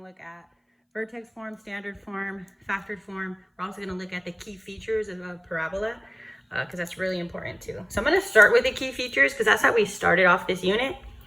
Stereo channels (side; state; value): both; identical; correlation 1.00